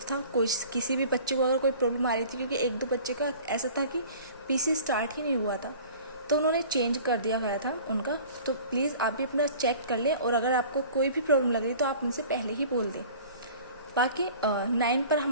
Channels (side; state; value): both; inverted; correlation -0.45